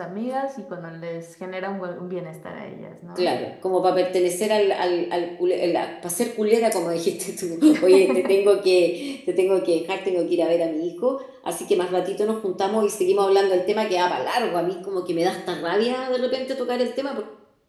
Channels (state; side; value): identical; both; correlation 1.00